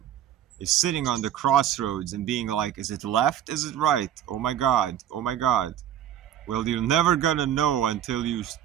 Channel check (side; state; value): left; quieter; 10.7 dB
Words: Is sitting on the crossroads and being like, is it left? Is it right? Oh my god. Oh my god. Well, you're never gonna know until